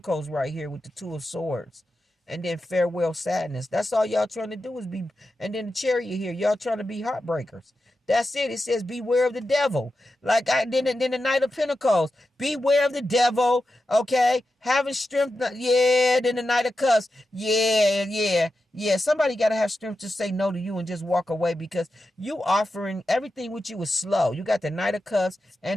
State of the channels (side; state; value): both; normal; correlation 0.90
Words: right here with the Two of Swords. And then farewell sadness. That's all y'all trying to do is be. And then the chariot here, y'all trying to be heartbreakers. That's it. It says beware of the devil. Like then the Knight of Pentacles. Beware of the devil. Okay, having strength. Yeah. Then the Knight of Cups. Yeah. Somebody got to have strength to say no to you and just walk away, because you offering everything with you is slow. You got the Knight of Cups